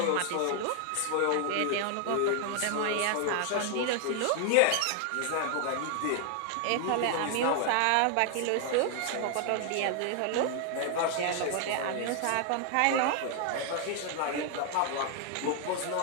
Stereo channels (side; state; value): both; different; correlation 0.00